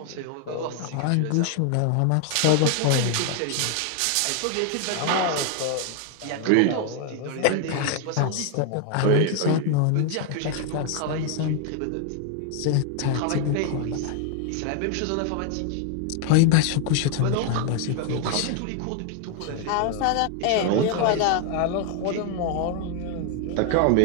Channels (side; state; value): both; different; correlation 0.00